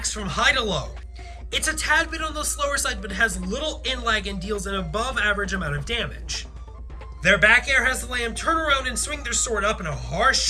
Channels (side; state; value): both; identical; correlation 1.00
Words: from high to low. It's a tad bit on the slower side, but has little in-lag and deals an above average amount of damage. Their back air has the lamb turn around and swing their sword up in a